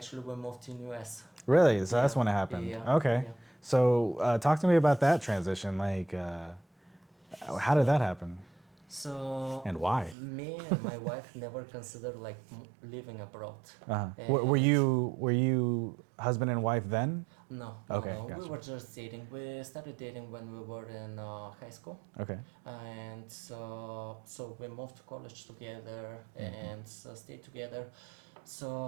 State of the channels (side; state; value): left; drops out; at 10.2 s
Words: we moved to US. Really? So that's when it happened. Yeah. Okay. Yeah. So talk to me about that transition. Like, how did that happen? So and why? Me and my wife never considered living abroad. Were you husband and wife then? No, Okay, no. We gotcha. were just dating. We started dating when we were in high school, Okay. and so we moved to college together and stayed together. So